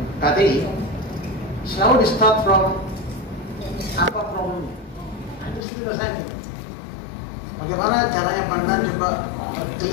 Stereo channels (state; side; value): drops out; right; at 5.6 s